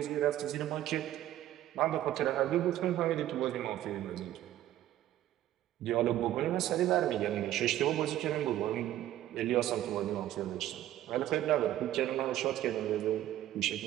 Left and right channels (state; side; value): quieter; left; 13.1 dB